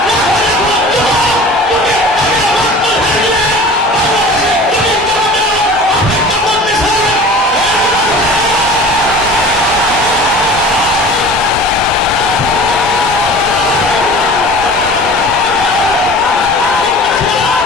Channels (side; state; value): both; normal; correlation 0.41